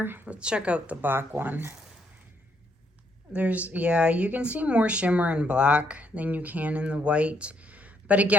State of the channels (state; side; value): normal; both; correlation 0.72